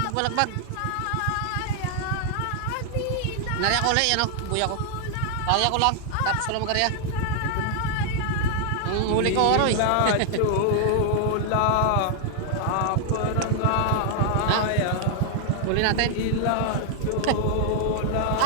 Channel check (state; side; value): different; both; correlation 0.00